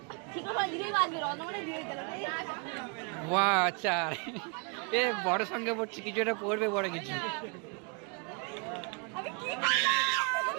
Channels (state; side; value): quieter; left; 35.2 dB